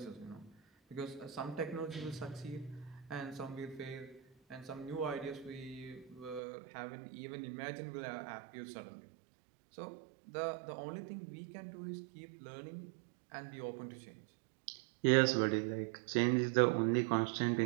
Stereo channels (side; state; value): left; drops out; at 6.4 s